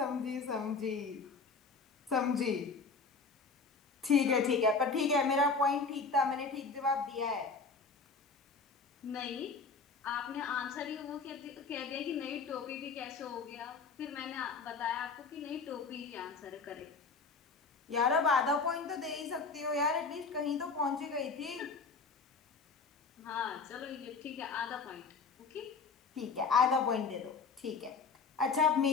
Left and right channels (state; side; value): quieter; right; 4.6 dB